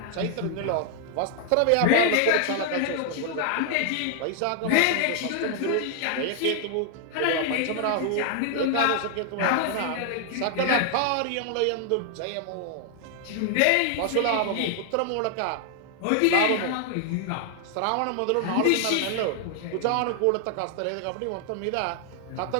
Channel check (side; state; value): both; different; correlation 0.00